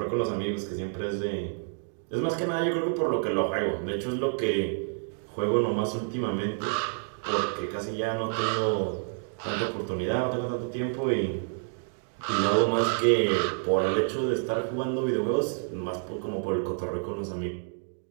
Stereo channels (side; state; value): left; silent; 59 dB below the other